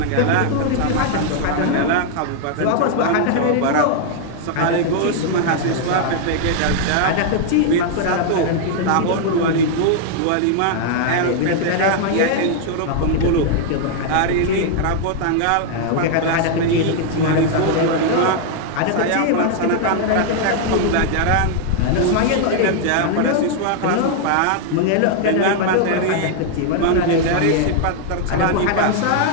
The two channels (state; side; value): different; both; correlation 0.00